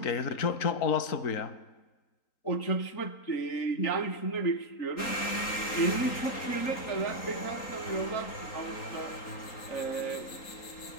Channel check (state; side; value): late; right; 3.8 ms